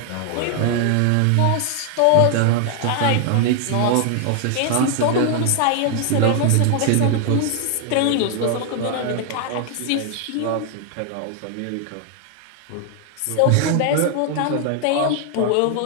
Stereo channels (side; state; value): both; different; correlation 0.00